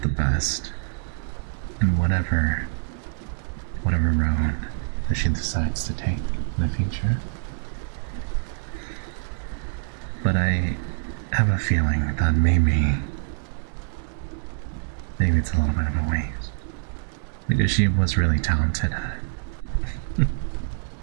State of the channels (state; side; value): silent; left; digital silence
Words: the best in whatever road that she decides to take in the future. But I have a feeling that maybe it's a little bit of a waste, because she was really talented at it.